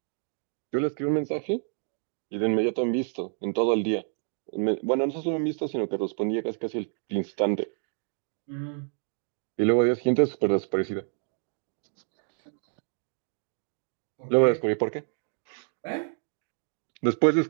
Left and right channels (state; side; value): silent; left; 59 dB below the other